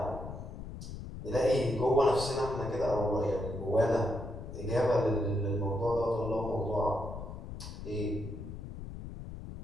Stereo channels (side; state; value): left; noise; rumble, 10 dB below the sound